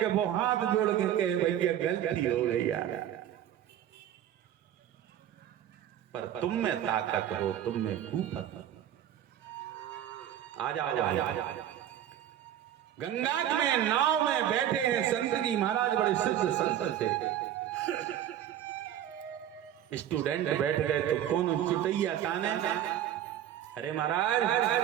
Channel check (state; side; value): quieter; left; 11.0 dB